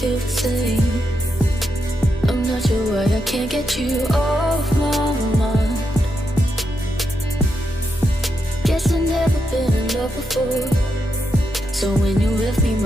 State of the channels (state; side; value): normal; both; correlation 0.83